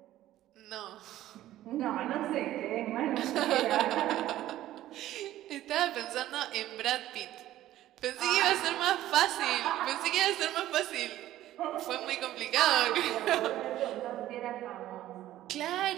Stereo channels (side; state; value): left; quieter; 14.0 dB